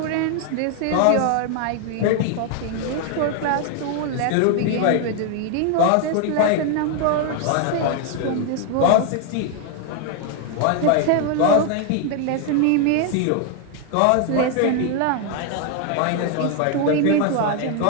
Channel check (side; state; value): both; different; correlation 0.00